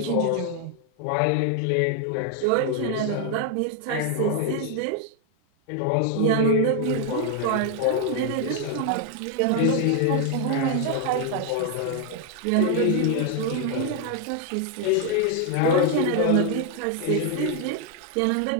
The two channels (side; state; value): both; different; correlation 0.00